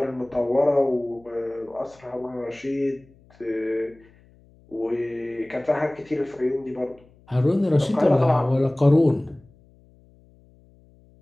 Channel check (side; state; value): left; noise; hum, 29 dB below the sound